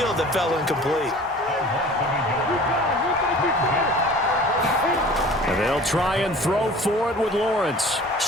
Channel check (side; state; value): both; normal; correlation 0.45